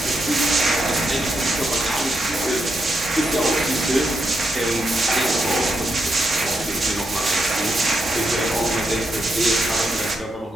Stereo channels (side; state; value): both; normal; correlation 0.82